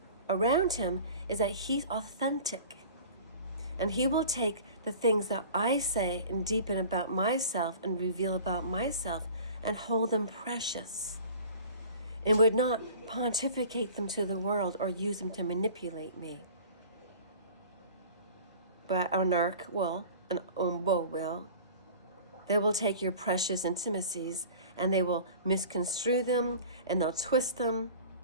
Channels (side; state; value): both; inverted; correlation -0.42